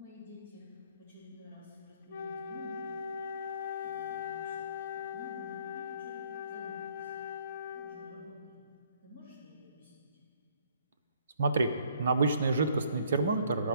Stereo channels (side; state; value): both; inverted; correlation -0.63